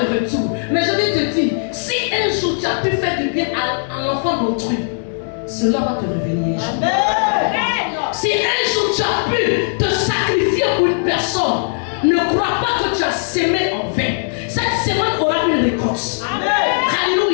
retour. Mais je vais te dire, si un jour tu as pu faire du bien à l'enfant d'autrui, cela va te revenir. Si un jour tu as pu te sacrifier pour une personne, ne crois pas que tu as sémé en vain. Cette semaine aura une récolte.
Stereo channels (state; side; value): silent; right; digital silence